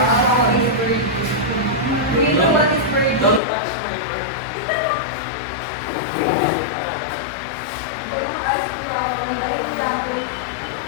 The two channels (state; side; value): drops out; right; at 3.4 s